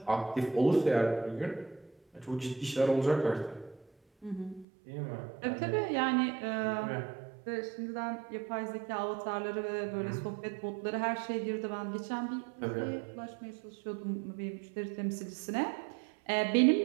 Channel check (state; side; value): drops out; left; at 4.7 s